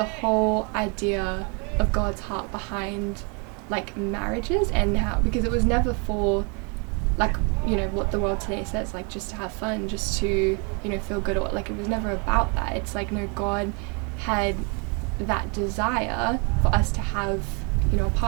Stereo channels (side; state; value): left; quieter; 34.5 dB